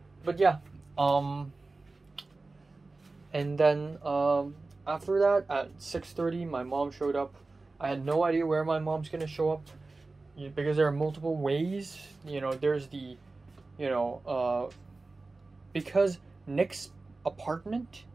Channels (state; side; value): quieter; left; 3.5 dB